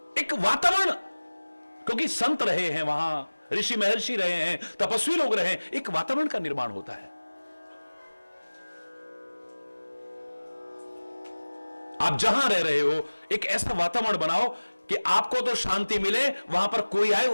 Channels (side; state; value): both; inverted; correlation -1.00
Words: एक वातावरण, क्योंकि संत रहे हैं वहां, ऋषि महर्षि रहे हैं, तपस्वी लोग रहे हैं, एक वातावरण का निर्माण होता है। आप जहां रह रहे हो एक ऐसा वातावरण बनाओ कि आपको तो शांति मिले, वहां पर कोई आए